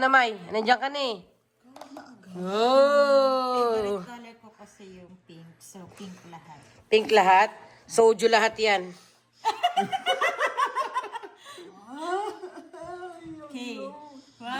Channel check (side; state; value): both; identical; correlation 1.00